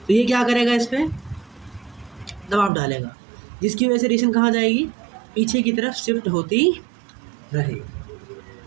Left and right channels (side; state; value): left; drops out; at 2.7 s